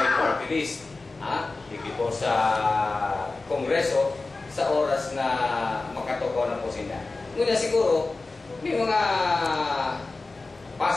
Party List hindi po sa kongreso sa oras na makatukaw na po sila. Ngunit siguro, may mga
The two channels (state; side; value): quieter; right; 3.5 dB